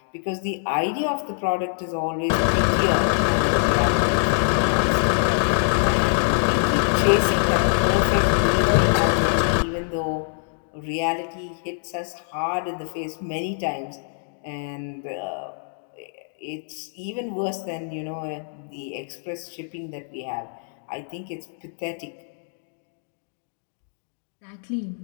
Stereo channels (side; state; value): right; silent; digital silence